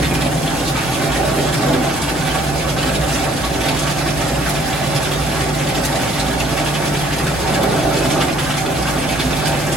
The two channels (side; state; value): both; normal; correlation 0.60